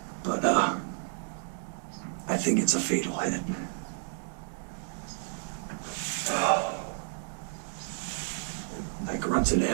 But I think it's a fatal hit. I grunted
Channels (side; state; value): left; silent; digital silence